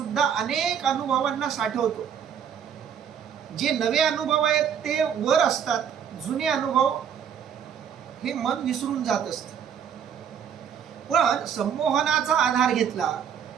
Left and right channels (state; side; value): quieter; left; 8.1 dB